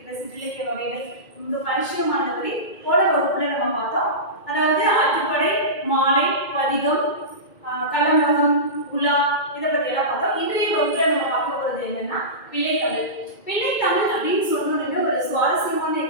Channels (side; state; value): right; late; 2.2 ms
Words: சிற்றிலக்கிய வகைகள் ரொம்ப பரிச்சயமானபடி போன வகுப்புல நம்ம பார்த்தோம். அதாவது ஆற்றுப்படை, மாலை, பதிகம், கலம்பகம், உலா, இதை பத்தி எல்லாம் பார்த்தோம். இன்றைய வகுப்புல நம்ம பார்க்க போறது என்னன்னா பிள்ளைத்தமிழ். பிள்ளைத்தமிழ் அப்படின்னு சொன்னோடனே ஒரு சுவாரஸ்யமான